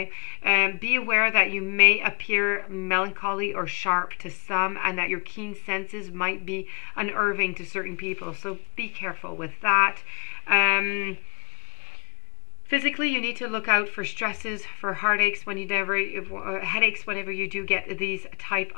Be aware that you may appear melancholy or sharp to some, and that your keen senses might be unnerving to certain people. So be careful with that. Physically, you need to look out for stresses, for heartaches headaches whenever you do get these type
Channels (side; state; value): right; quieter; 32.5 dB